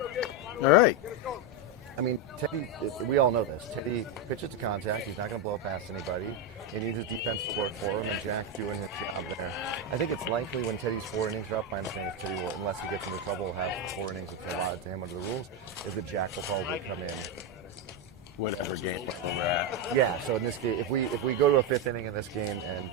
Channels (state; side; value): normal; both; correlation 0.07